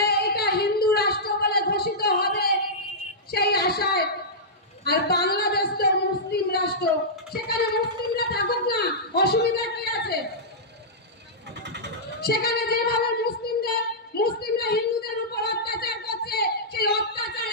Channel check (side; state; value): both; normal; correlation -0.13